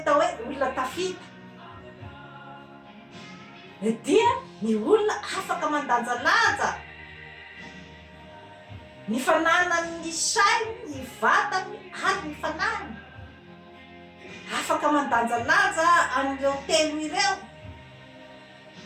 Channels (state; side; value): identical; both; correlation 1.00